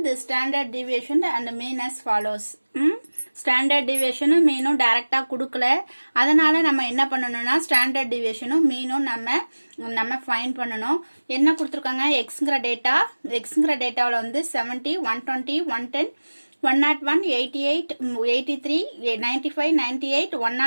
the standard deviation and mean as follows. Standard டிவியேஷனும் மீனும் டைரக்டா கொடுக்கல. அதனால நம்ம என்ன பண்ணணும்னா ஸ்டாண்டர்ட் டிவியேஷனும் மீனும் நம்ம ஃபைண்ட் பண்ணணும். என்ன கொடுத்துருக்காங்க எக்ஸ்ங்கிற டேட்டாவில் வந்து 70, 120, 110, 101, 88, 83, 95, 98,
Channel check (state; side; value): inverted; both; correlation -1.00